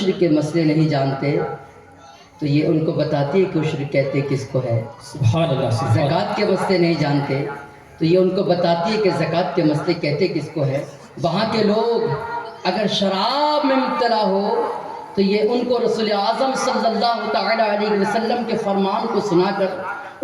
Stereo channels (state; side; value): identical; both; correlation 1.00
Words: کے مسئلے نہیں جانتے تو یہ ان کو بتاتی ہے کہ عشر کہتے کس کو ہے. سبحان اللہ، سبحان اللہ. زکوٰۃ کے مسئلے نہیں جانتے تو یہ ان کو بتاتی ہے کہ زکوٰۃ کے مسئلے کہتے کس کو ہے. وہاں کے لوگ اگر شراب میں مبتلا ہو تو یہ ان کو رسول اعظم صلی اللہ تعالی علیہ وسلم کے فرمان کو سنا کر